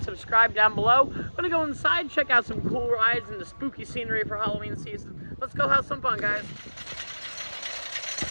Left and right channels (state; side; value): inverted; both; correlation -1.00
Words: subscribe down below. I'm gonna go inside, check out some cool rides and the spooky scenery for Halloween season. Let's go have some fun, guys.